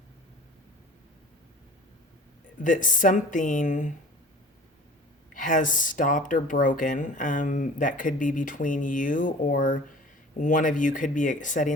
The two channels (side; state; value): both; normal; correlation 0.43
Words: that something has stopped or broken. That could be between you, or one of you could be